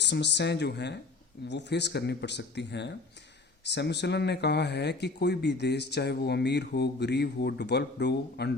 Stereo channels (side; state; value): right; quieter; 3.7 dB